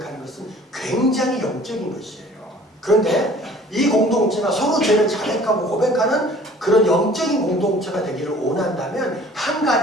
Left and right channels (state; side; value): normal; both; correlation 0.50